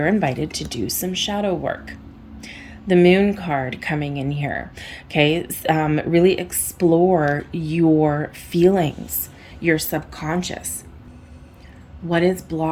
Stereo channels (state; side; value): identical; both; correlation 1.00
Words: invited to do some shadow work. The Moon card coming in here, okay? Really explore your feelings, your subconscious. What is